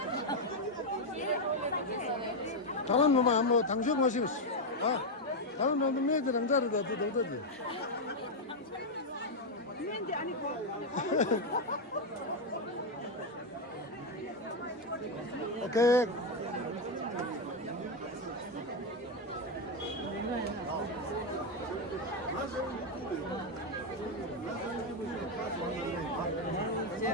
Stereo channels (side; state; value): both; normal; correlation 0.04